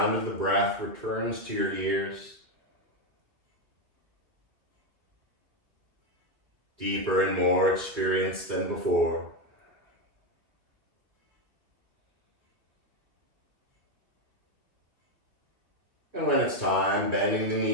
of the breath returns to your ears. deeper and more experienced than before. And when it's time, bending the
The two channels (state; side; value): late; left; 2.7 ms